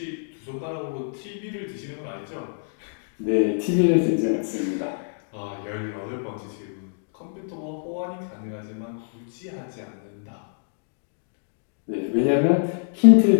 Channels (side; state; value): right; silent; digital silence